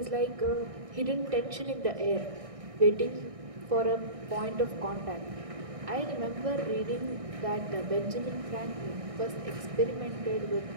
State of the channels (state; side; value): late; left; 1.6 ms